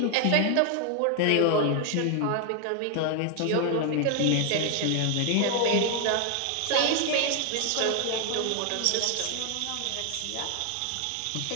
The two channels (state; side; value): different; both; correlation 0.00